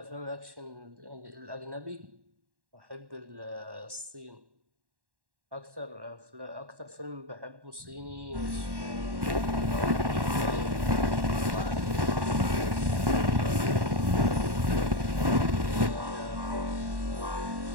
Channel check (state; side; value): late; left; 1.1 ms